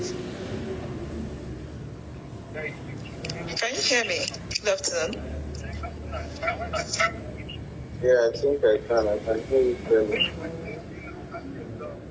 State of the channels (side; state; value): both; identical; correlation 1.00